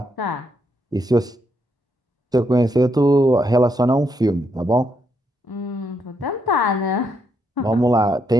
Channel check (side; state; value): both; normal; correlation 0.77